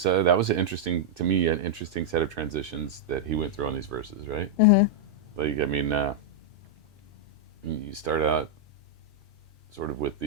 an interesting set of transitions that he went through on these verses, right? Mm-hmm. Like, I mean, you start out sort of with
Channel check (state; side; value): normal; both; correlation -0.05